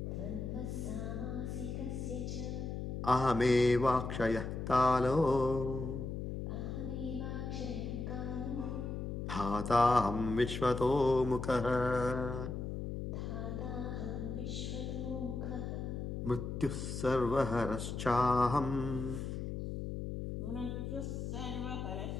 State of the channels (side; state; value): left; noise; hum, 4 dB below the sound